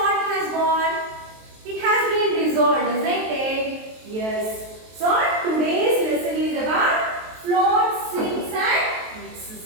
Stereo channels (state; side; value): late; left; 23 ms